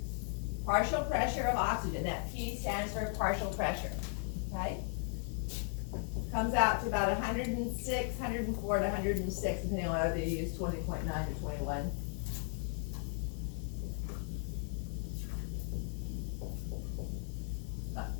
partial pressure of oxygen, that P stands for partial pressure, okay? Comes out to about 106, 104 to 106, depending on whether you use 20.9 or 21.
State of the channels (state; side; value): silent; right; 53 dB below the other